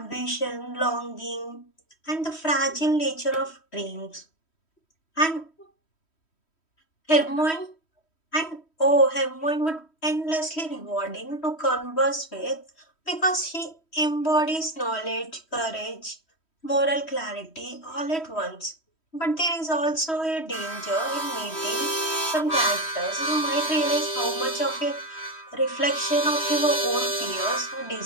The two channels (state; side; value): late; right; 3.1 ms